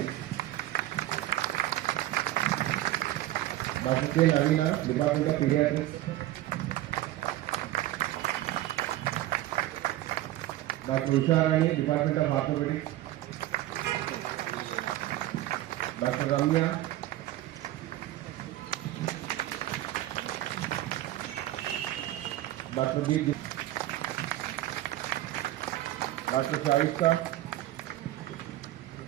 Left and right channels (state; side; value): quieter; left; 15.1 dB